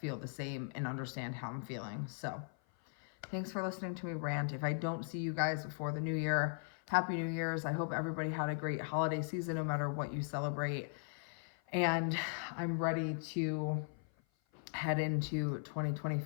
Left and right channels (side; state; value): right; silent; 52 dB below the other